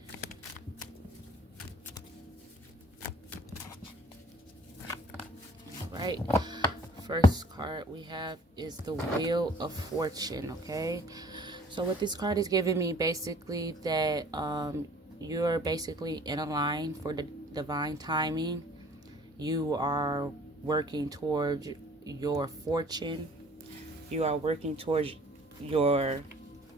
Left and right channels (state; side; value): normal; both; correlation 0.52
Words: Right, first card we have is the Wheel of Fortune. Okay, so what this card is giving me, basically, that you're basically in a line for the divine timing. You are working towards your fortune. You are working towards your